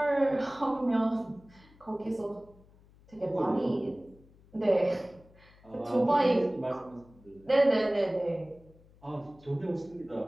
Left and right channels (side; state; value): left; noise; hum, 26 dB below the sound